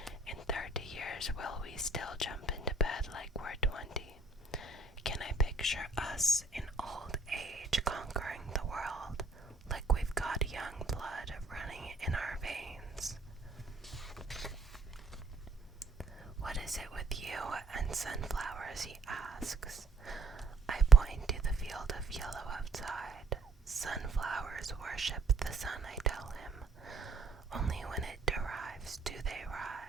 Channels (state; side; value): quieter; left; 3.7 dB